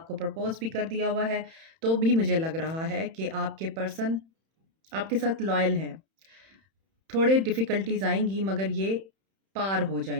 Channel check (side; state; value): left; late; 31 ms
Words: प्रपोज़ भी कर दिया हुआ है, तो भी मुझे लग रहा है कि आपके पर्सन आपके साथ लॉयल हैं। थोड़े डिफ़िकल्टीज़ आएँगी मगर ये पार हो